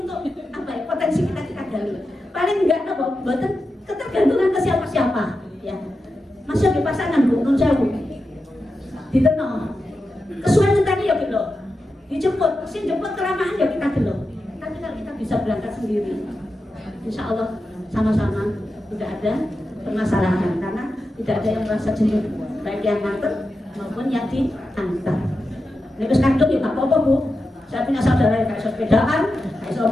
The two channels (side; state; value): both; normal; correlation 0.89